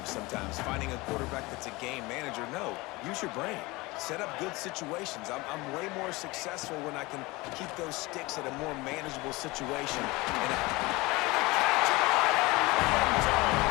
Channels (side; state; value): right; quieter; 22.6 dB